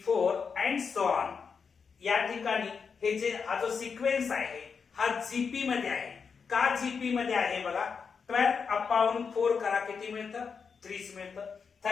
अँड सो ऑन. या ठिकाणी हे जे हा जो सिक्वेन्स आहे हा जीपी मध्ये आहे. का जीपी मध्ये आहे बघा, 12/4 करा किती मिळतं, 30 मिळतं.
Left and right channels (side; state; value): right; quieter; 5.8 dB